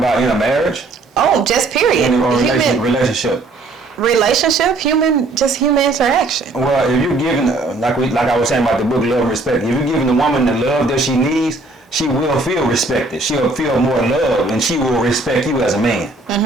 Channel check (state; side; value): quieter; left; 3.2 dB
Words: in a marriage? Oh, just period. Relationship, human interaction. Well, if you're giving, like I was saying about the book Love and Respect, if you're giving the woman the love that she needs, she will feel respected. She'll feel more love, and she will respect you as a man.